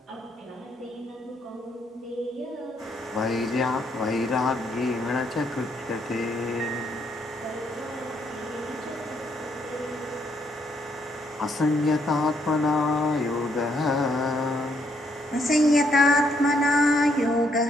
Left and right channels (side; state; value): both; normal; correlation 0.73